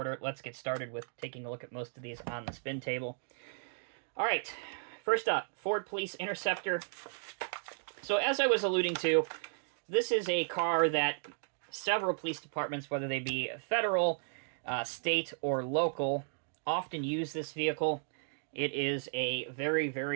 let's get started with taking a look at most of these on the spin table. All right, first up, Ford Police Interceptor. So, as I was alluding to, this is a car that several police departments, whether they be federal, state, or local, often use this vehicle. It is a very,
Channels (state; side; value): silent; left; digital silence